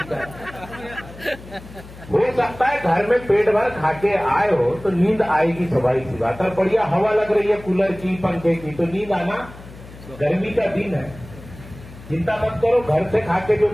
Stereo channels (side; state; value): left; noise; hum, 17 dB below the sound